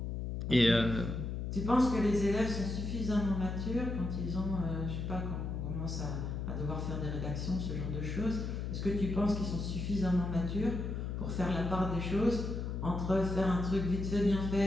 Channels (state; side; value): noise; left; hum, 3 dB below the sound